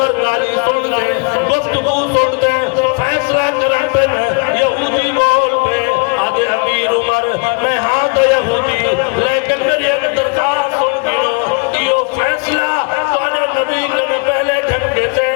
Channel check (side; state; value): right; quieter; 34.4 dB